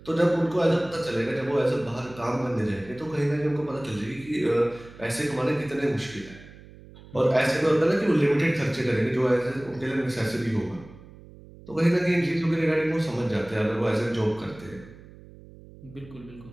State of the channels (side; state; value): right; noise; hum, 20 dB below the sound